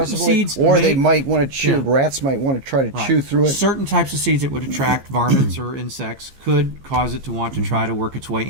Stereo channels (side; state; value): left; late; 15 ms